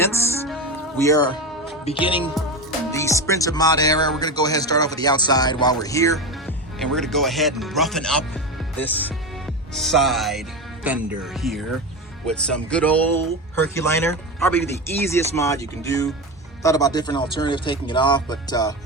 We are beginning the Sprinter mod era. We're gonna go ahead and start off with the outside while we're here. And we're gonna go ahead and roughen up this side fender here with some good old Herculiner. Probably the easiest mod you can do. Thought about different alternatives taking it off, but I'm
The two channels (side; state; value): both; normal; correlation 0.20